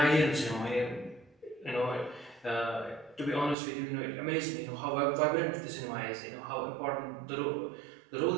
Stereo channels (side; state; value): left; drops out; at 3.6 s